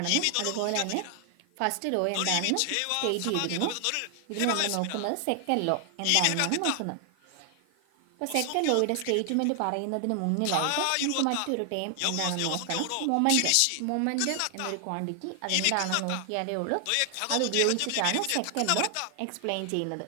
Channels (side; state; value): both; different; correlation 0.00